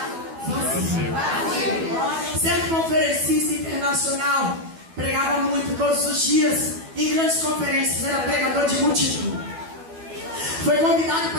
vazio. Certo conferencista internacional pregava muito todos os dias em grandes conferências, era pregador de multidão. Foi convidado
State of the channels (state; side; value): late; left; 12 ms